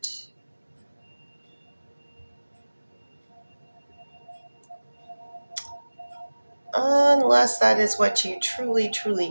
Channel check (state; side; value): inverted; both; correlation -1.00